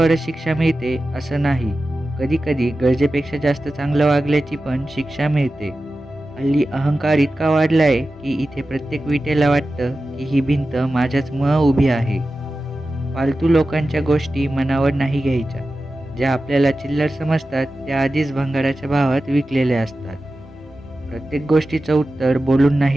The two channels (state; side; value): normal; both; correlation 0.94